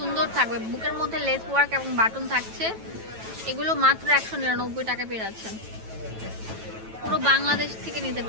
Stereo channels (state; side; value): late; left; 9.1 ms